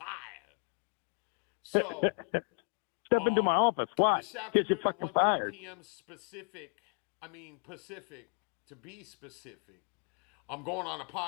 So, Step into um, my office. Why? this Because you're afternoon at fucking 1:30 fired. p.m. Pacific, to be specific, I'm going on a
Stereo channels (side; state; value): right; quieter; 33.0 dB